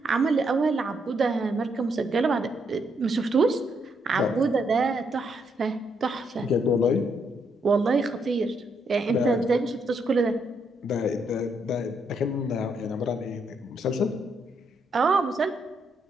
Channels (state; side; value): normal; both; correlation 0.76